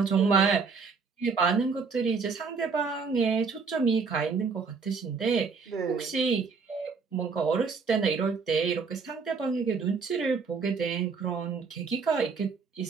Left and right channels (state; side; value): quieter; left; 5.0 dB